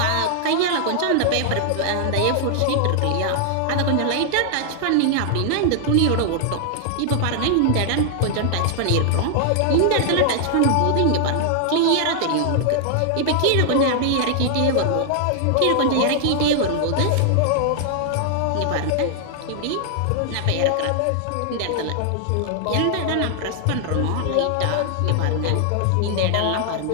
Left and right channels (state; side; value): different; both; correlation 0.00